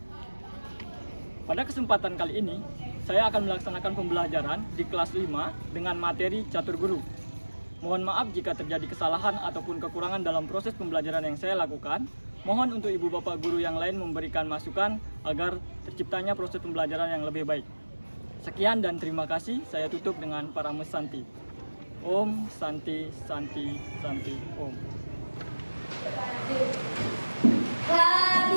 Pada kesempatan kali ini, saya akan melaksanakan pembelajaran di kelas 5 dengan materi catur guru. Mohon maaf jika terjadi kesalahan ataupun kekurangan dalam proses pembelajaran yang saya lakukan. Mohon untuk ibu bapak guru yang lain memberikan masukan agar terciptanya proses pembelajaran yang lebih baik. Sekian dan terima kasih. Saya tutup dengan Parame Santi. Om Santi Santi Santi Om.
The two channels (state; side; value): inverted; both; correlation -1.00